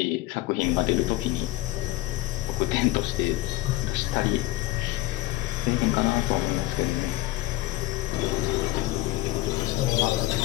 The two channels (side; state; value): right; quieter; 17.4 dB